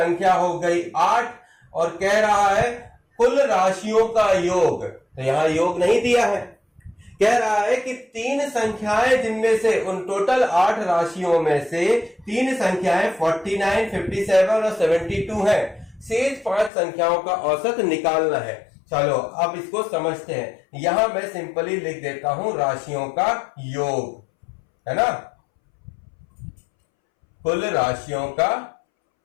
हो गई 8 और कह रहा है कुल राशियों का योग। तो यहां योग नहीं दिया है, कह रहा है कि 3 संख्याएं जिनमें से उन टोटल 8 राशियों में से 3 संख्याएं 49, 57 और 72 है। शेष 5 संख्याओं का औसत निकालना है। चलो अब इसको समझते हैं। यहां मैं सिंपली लिख देता हूं राशियों का योग, है ना, कुल राशियों का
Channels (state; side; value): drops out; right; at 16.7 s